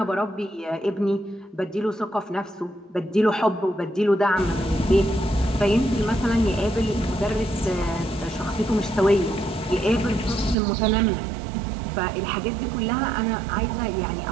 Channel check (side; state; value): left; drops out; at 10.6 s